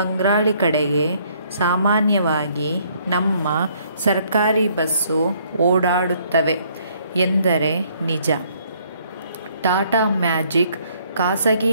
ಕಡೆಗೆ ಸಾಮಾನ್ಯವಾಗಿ ನಮ್ಮ ಸರ್ಕಾರಿ ಬಸ್ಸು ಓಡಾಡುತ್ತವೆ ಎಂದರೆ ನಿಜ. ಟಾಟಾ ಮ್ಯಾಜಿಕ್ ಖಾಸಗಿ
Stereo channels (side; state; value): both; inverted; correlation -0.64